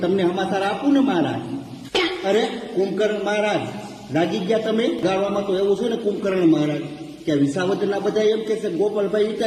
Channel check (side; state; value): both; identical; correlation 1.00